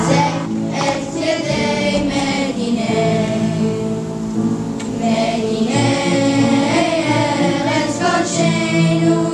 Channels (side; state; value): both; identical; correlation 1.00